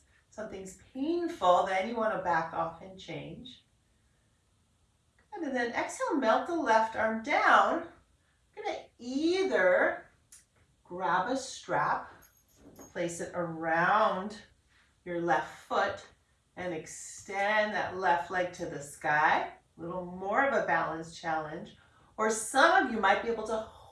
something's painful, then you want to back off and change. And then exhale, melt the left arm down. You're going to either grab a strap, place it around your left foot, and extend that left leg to the sky. A little more of a balance challenge. Or some of you might be able to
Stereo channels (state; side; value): identical; both; correlation 1.00